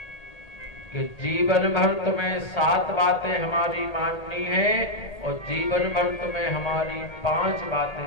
कि जीवन भर तुम्हें 7 बातें हमारी माननी है और जीवन भर तुम्हें हमारी 5 बातें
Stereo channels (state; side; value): late; right; 1.8 ms